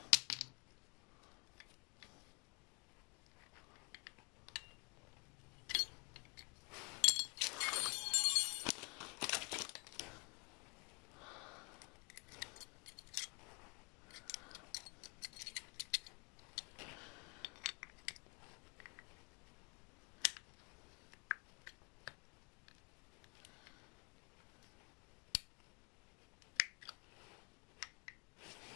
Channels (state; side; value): quieter; right; 33.6 dB